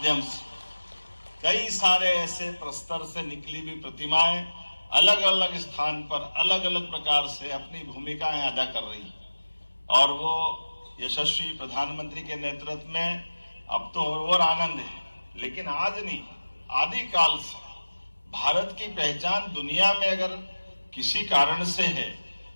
से कई सारे ऐसे प्रस्तर से निकली हुई प्रतिमाएं अलग अलग स्थान पर अलग अलग प्रकार से अपनी भूमिकाएं अदा कर रही और वो यशस्वी प्रधानमंत्री के नेतृत्व में अब तो और आनंद है। लेकिन आज नहीं, आदिकाल से भारत की पहचान दुनिया में अगर किसी कारण से है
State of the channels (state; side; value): inverted; both; correlation -1.00